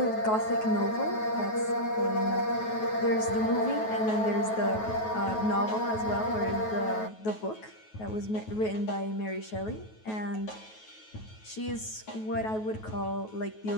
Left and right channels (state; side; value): late; right; 9.3 ms